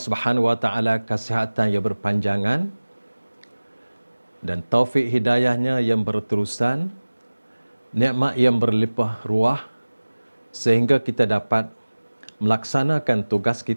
wa taala kesihatan yang berpanjangan dan taufik hidayahnya yang berterusan, nikmat yang berlimpah ruah, sehingga kita dapat melaksanakan tugas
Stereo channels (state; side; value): inverted; both; correlation -1.00